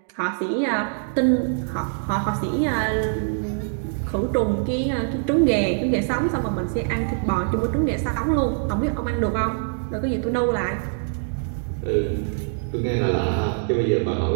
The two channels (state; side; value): silent; left; digital silence